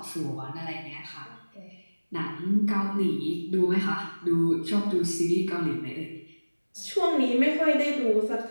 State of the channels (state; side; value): inverted; both; correlation -1.00